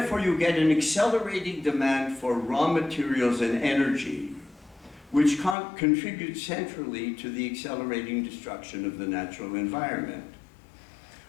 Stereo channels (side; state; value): right; drops out; at 5.6 s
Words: you get an accelerating demand for raw materials and energy, which contributes centrally to the accelerating destruction of the natural environment.